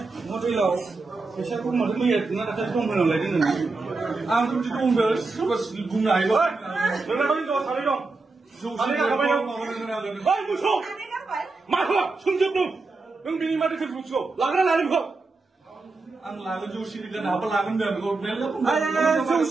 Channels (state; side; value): quieter; left; 3.7 dB